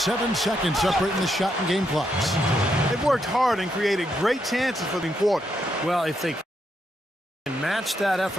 seconds separating the shot and game clocks. They've worked hard and created great chances for the quarter. Well, if they can match that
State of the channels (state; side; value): normal; both; correlation 0.79